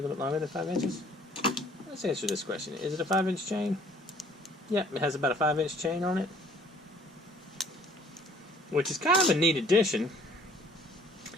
little bit longer than 5 inches. Let's answer this question. Is it a 5-inch chain? Yep, it has about a 5-inch chain on it, which is kind of a neat addition.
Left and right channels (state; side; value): normal; both; correlation 0.57